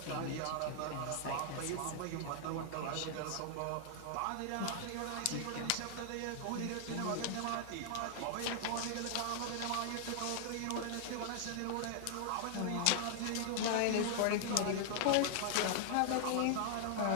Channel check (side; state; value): both; different; correlation -0.01